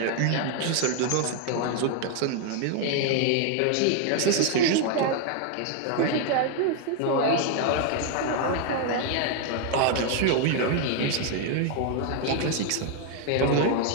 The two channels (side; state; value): both; different; correlation 0.01